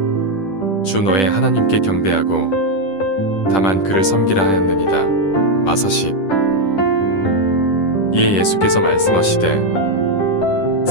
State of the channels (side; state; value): right; late; 10 ms